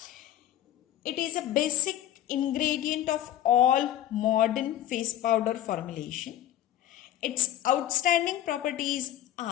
It is a basic ingredient of all modern face powder formulation. Its outstanding properties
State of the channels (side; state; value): right; quieter; 12.3 dB